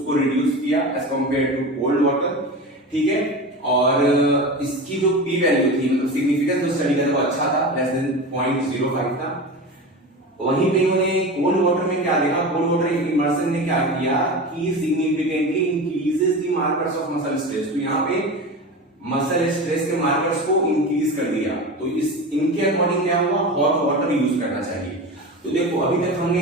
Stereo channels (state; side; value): normal; both; correlation 0.28